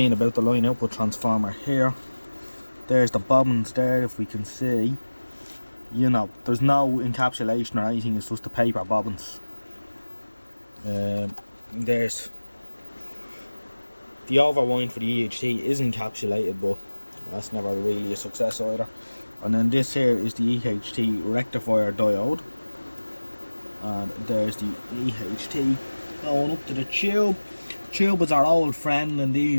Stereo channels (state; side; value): inverted; both; correlation -1.00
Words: about the line output transformer here. There's the bobbins there, if we can see. You know, there's no encapsulation or anything, it's just the paper bobbins. There's the overwind for the EHT is encapsulated, but that's never really a success either. And then this here is the EHT rectifier diode. And there's the EHT going up to the tube. Tube is our old friend in